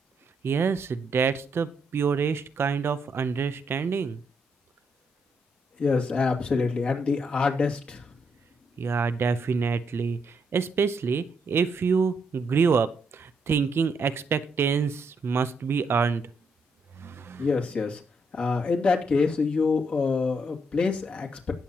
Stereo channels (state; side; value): normal; both; correlation 0.77